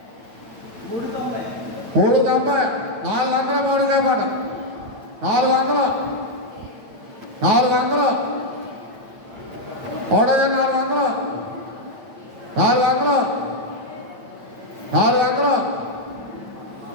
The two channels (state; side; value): late; left; 9.4 ms